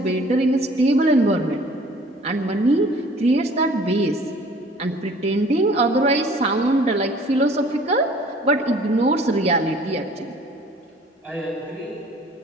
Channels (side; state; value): both; normal; correlation 0.52